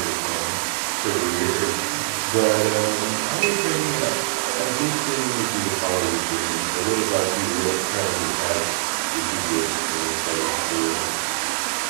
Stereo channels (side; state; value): left; silent; 62 dB below the other